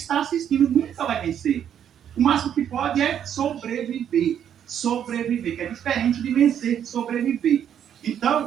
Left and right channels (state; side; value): quieter; left; 9.3 dB